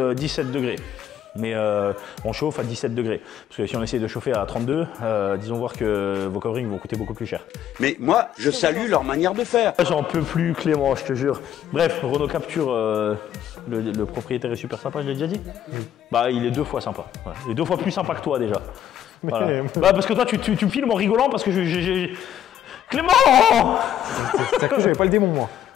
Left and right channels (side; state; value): right; quieter; 10.4 dB